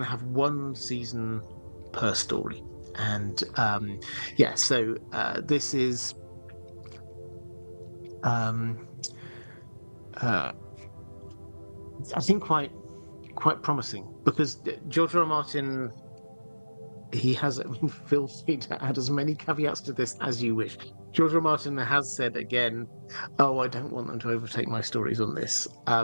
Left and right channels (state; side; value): inverted; both; correlation -1.00